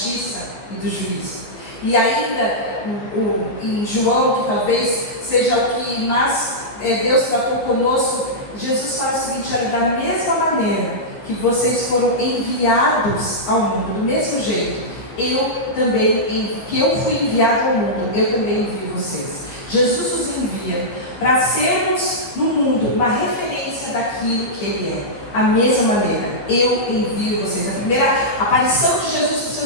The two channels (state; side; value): late; right; 14 ms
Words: e do juízo. E ainda em João, que talvez seja o que mais Deus tratou conosco, Jesus fala o seguinte: olha, da mesma maneira que vocês foram enviados ao mundo, do mesmo jeito, que eu fui enviado ao mundo, eu também envio vocês. Jesus nos envia para sermos no mundo uma referência daquilo que Ele é. A mesma maneira, eu envio vocês. A primeira aparição de Jesus para os